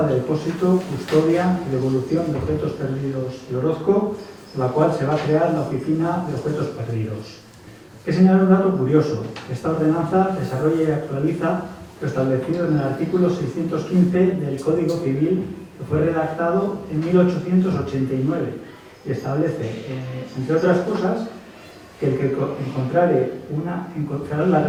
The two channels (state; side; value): identical; both; correlation 1.00